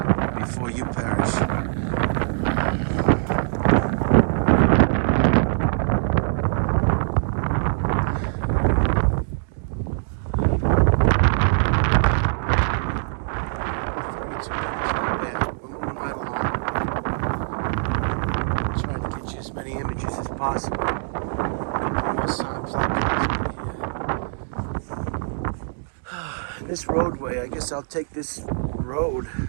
before you perish. Possible. This roadway, I guess I'll take this road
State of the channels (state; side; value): silent; left; digital silence